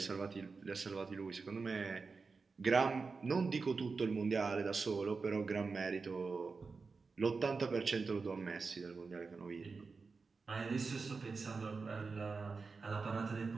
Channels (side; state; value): left; quieter; 4.5 dB